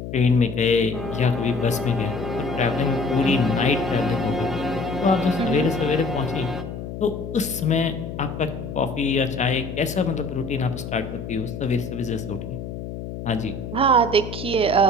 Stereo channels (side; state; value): left; noise; hum, 8 dB below the sound